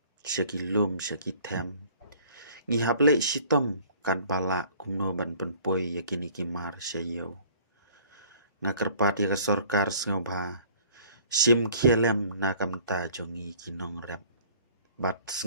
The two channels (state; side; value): inverted; both; correlation -0.53